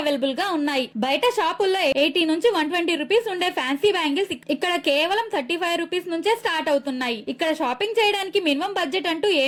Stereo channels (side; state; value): both; identical; correlation 1.00